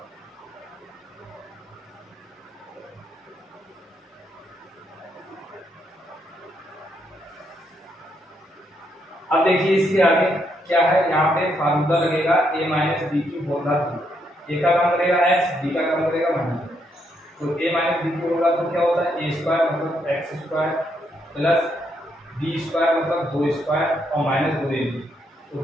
अब देखिए इसके आगे क्या है, यहाँ पे फार्मूला लगेगा a minus B cube whole cube, A का काम करेगा x, b का काम करेगा माइनस, तो a माइनस बी क्यूब होगा तो क्या होता है a स्क्वायर मतलब x square plus b square मतलब 2 स्क्वायर और माइनस 2ab, तो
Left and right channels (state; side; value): normal; both; correlation 0.76